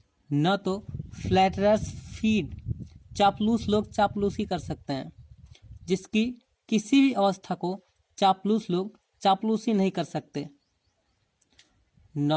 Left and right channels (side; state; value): both; identical; correlation 1.00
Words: न तो फ्लैटरर्स फीड, चापलूस लोग चापलूसी कर सकते हैं, जिसकी किसी भी अवस्था को चापलूस लोग चापलूसी नहीं कर सकते,